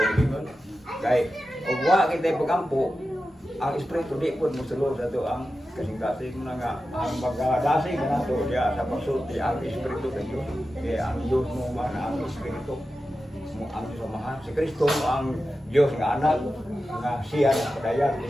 kay og wa kita pag-ampo ang espiritu di pud mosulod dato ang kasing-kasing na nga ang magdasig na to diya sa pagsulti ang espiritu sa Dios kaya ang Dios mo man ang espiritu mo ang samahan si Kristo mo ang Dios nga anak nga siya na padayan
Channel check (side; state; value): both; normal; correlation 0.92